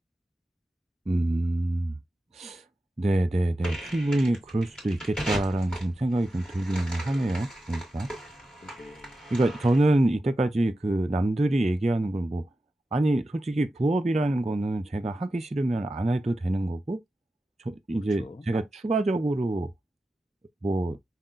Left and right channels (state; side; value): normal; both; correlation 0.92